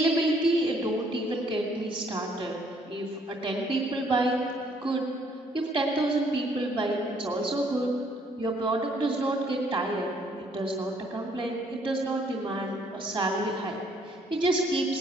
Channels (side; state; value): both; normal; correlation 0.65